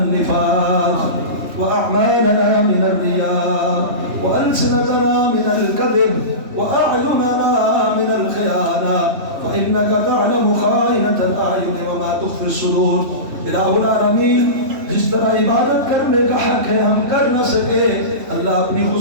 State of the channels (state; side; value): late; left; 3.2 ms